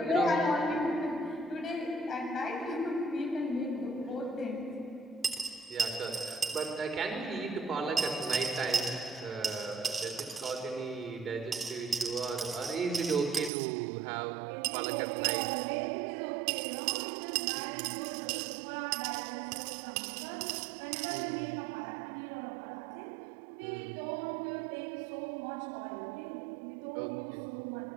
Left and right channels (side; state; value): left; drops out; at 13.5 s